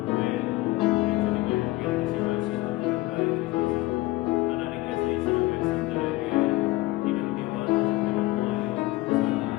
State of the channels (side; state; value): right; quieter; 19.4 dB